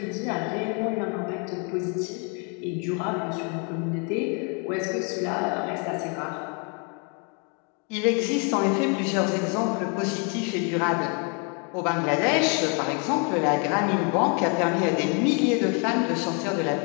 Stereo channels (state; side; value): quieter; right; 36.3 dB